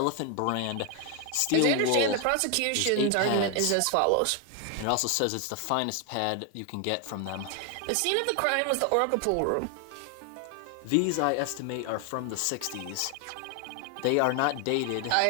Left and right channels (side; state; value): both; different; correlation 0.01